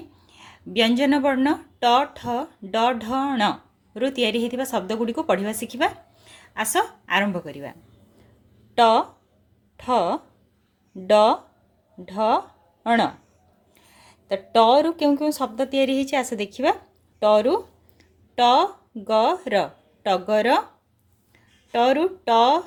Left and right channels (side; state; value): both; identical; correlation 1.00